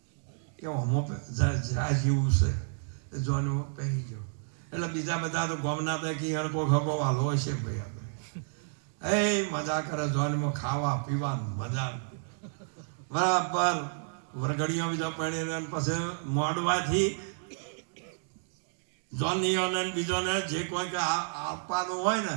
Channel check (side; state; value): left; silent; digital silence